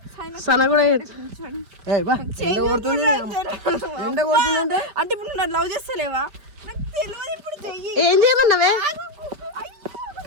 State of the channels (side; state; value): left; late; 4.9 ms